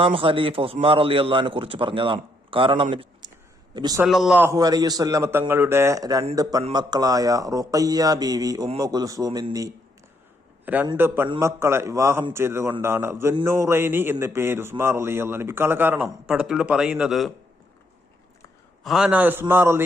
ഖലീഫ ഉസ്മാൻ റളിയല്ലാഹുവിനെ കുറിച്ച് പറഞ്ഞതാണ്. കാരണം നബി സല്ലല്ലാഹു അലൈഹി വസല്ലം തങ്ങളുടെ രണ്ട് പെൺമക്കളായ റുഖയ്യ ബീവി, ഉമ്മു കുൽസൂം എന്നീ രണ്ട് പെൺമക്കളെ വിവാഹം ചെയ്തുകൊണ്ടാണ് ദുന്നൂറൈനി എന്ന പേര് ഉസ്മാൻ റളിയല്ലാഹു ലഭിക്കാനുള്ള കാരണം. പടത്തിലൂടെ പറയുന്നത് മഹാനായ ഉസ്മാൻ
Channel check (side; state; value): both; normal; correlation 0.74